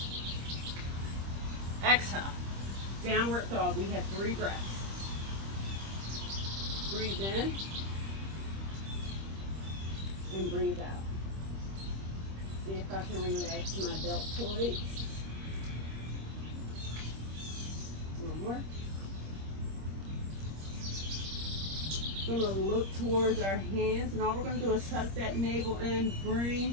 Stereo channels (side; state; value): left; late; 26 ms